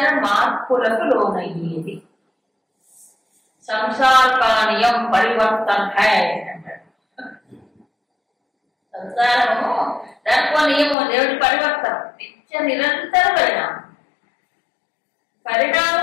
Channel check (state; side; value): drops out; right; at 11.0 s